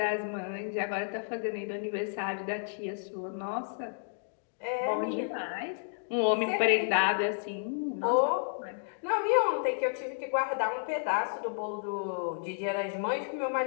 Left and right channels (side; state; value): right; silent; digital silence